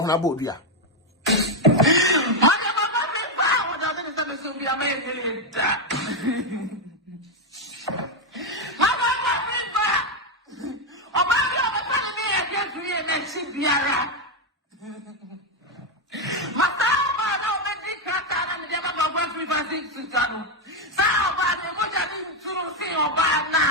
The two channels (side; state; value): both; normal; correlation 0.04